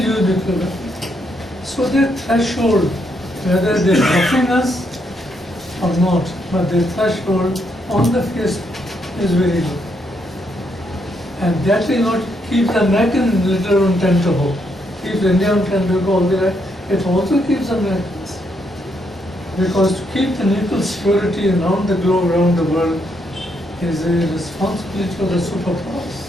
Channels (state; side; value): normal; both; correlation 0.76